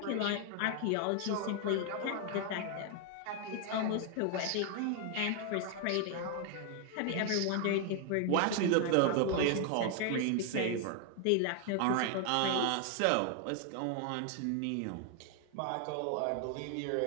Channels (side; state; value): both; different; correlation 0.00